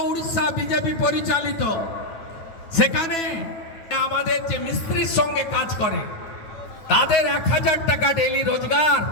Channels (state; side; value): late; right; 9.2 ms